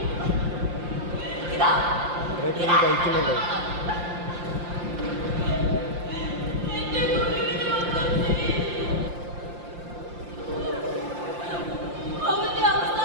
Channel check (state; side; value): late; left; 5.7 ms